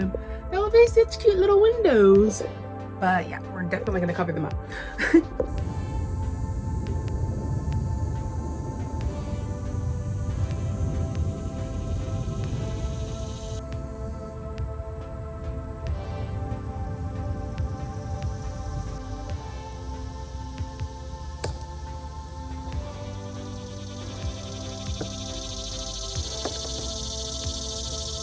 They'll be such cute little windows. But yeah, we're definitely gonna cover them up.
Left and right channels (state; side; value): identical; both; correlation 1.00